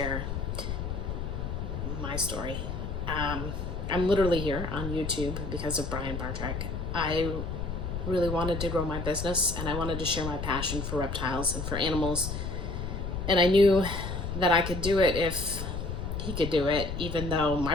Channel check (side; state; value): left; noise; rumble, 4 dB below the sound